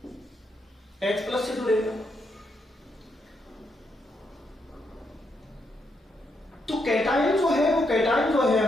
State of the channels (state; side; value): normal; both; correlation 0.79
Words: H+ से जुड़ेगा। तो कैटायन जो है वो, कैटायन जो है